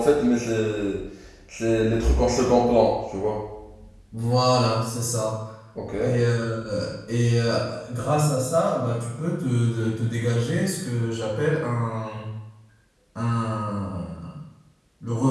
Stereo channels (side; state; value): both; identical; correlation 1.00